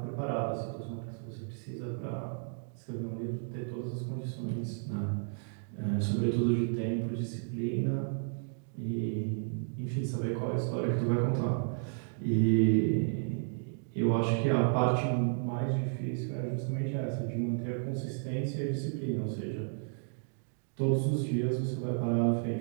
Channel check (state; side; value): silent; left; digital silence